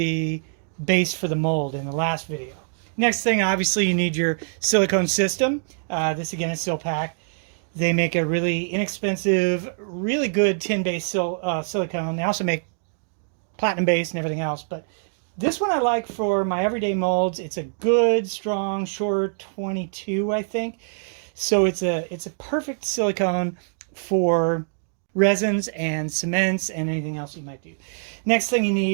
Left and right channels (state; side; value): silent; left; digital silence